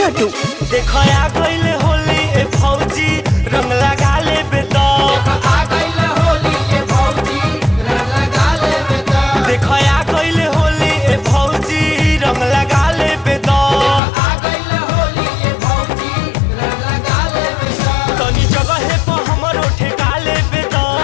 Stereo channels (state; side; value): drops out; right; at 14.0 s